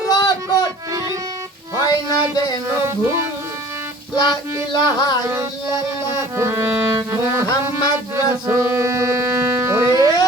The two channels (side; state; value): both; normal; correlation 0.48